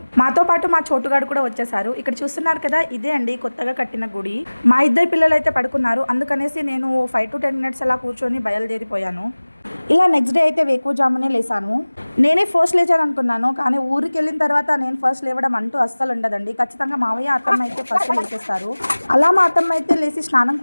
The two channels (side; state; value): both; inverted; correlation -1.00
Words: మాతో పాటు మా చోటుగాడు కూడా వచ్చేసారు. ఇక్కడ చూస్తున్నారు కదా, ఇదే అండి కొత్తగా కట్టిన గుడి. మా ఇద్దరు పిల్లలు అయితే పడుకున్నారు, అందుకనేసి నేను 5 to 10 minutes అలా కూర్చొని బయలుదేరిపోయాను. ఇలా నెక్స్ట్ డే అయితే వేకువజామునే లేసాను. నేనే ఫస్ట్ లేచాను అనుకున్నాను, కానీ ఊరికి వెళ్ళిన తర్వాత నేను ఫస్ట్ లేవడం అంటూ అస్సలు ఉండదండి. ఖచ్చితంగా మావయ్య అత్తమ్మ అయితే ఫస్ట్ లేచేస్తారు. అలా మా అత్తమ్మ అయితే లేచి స్నానం